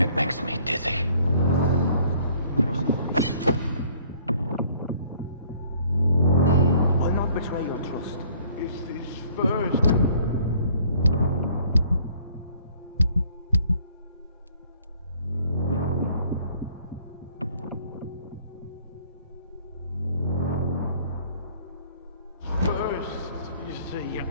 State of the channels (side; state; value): both; inverted; correlation -0.59